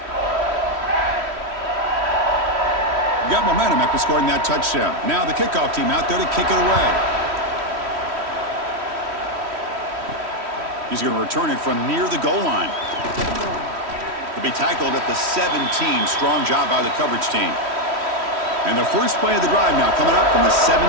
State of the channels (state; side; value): late; left; 3.1 ms